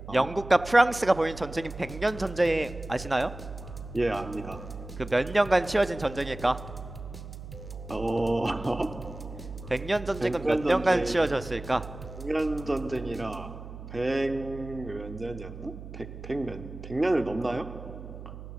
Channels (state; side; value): noise; right; hum, 12 dB below the sound